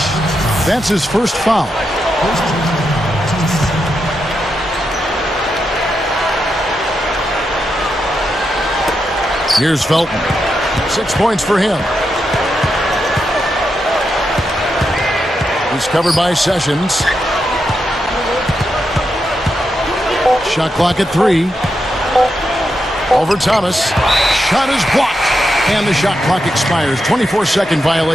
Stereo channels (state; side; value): normal; both; correlation 0.85